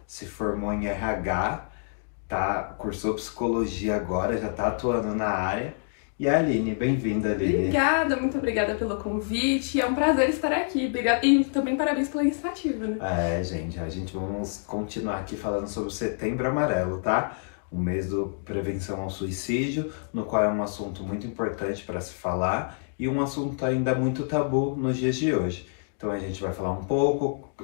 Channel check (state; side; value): silent; right; digital silence